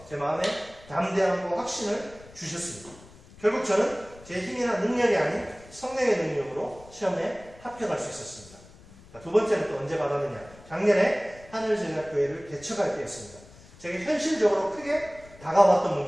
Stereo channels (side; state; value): left; noise; rumble, 22 dB below the sound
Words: 제 마음에 담대함과 확신을 주셨습니다. 결국 저는 제 힘이나 능력이 아닌 성령의 능력으로 시험에 합격할 수 있었습니다. 두 번째는 또 언제 받았느냐? 작년에 하늘제자교회를 개척할 때였습니다. 제게 현실적으로 크게 다가왔던